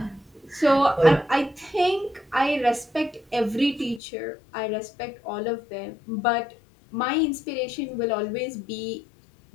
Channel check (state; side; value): drops out; right; at 4.0 s